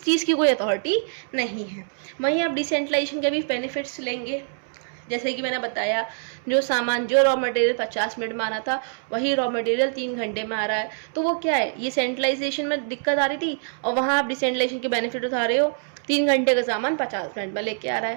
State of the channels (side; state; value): left; silent; 62 dB below the other